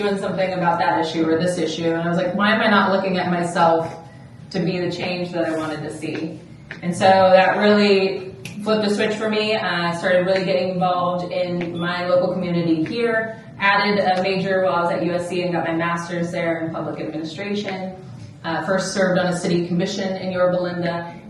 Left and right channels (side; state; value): both; identical; correlation 1.00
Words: something about that issue or this issue? And I was like, why am I not looking at myself to be the change that I wanted to see? And so that really flipped a switch for me. I started really getting involved in my local community here, added a major while I was at USC and got my master's there in public administration. First served on a city commission in Yorba,